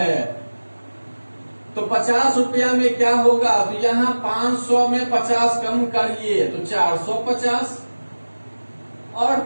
तो 50 रुपया में क्या होगा? तो यहाँ 500 में 50 कम करिए तो 450, और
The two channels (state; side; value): inverted; both; correlation -1.00